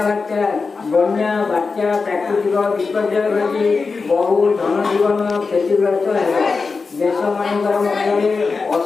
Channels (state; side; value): quieter; right; 4.5 dB